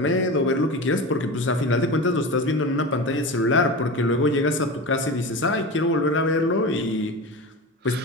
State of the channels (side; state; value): both; normal; correlation 0.27